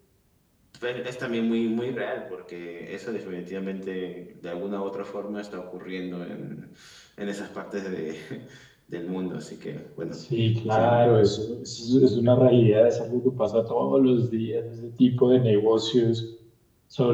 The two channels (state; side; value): identical; both; correlation 1.00